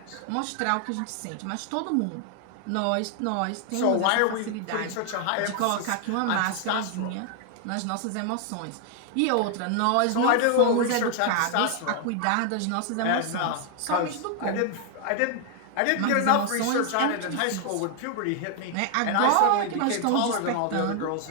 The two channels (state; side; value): different; both; correlation 0.00